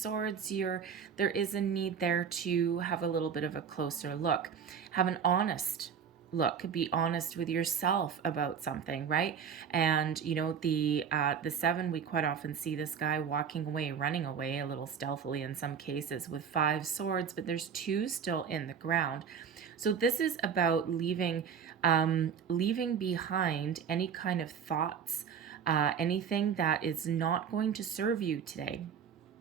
there is a need there to have a little bit of a closer look. Have an honest look, be honest with yourself about something, right? And you know, the seven, we quite often see this guy walking away, running away a little stealthily in some cases with 5 swords, but there's 2 still in the ground. So this is about leaving behind any kind of thoughts, anything that is not going to serve you today.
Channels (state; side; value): quieter; left; 7.2 dB